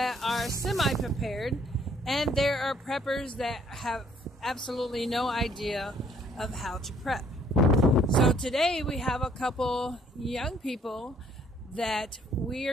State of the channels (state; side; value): normal; both; correlation 0.63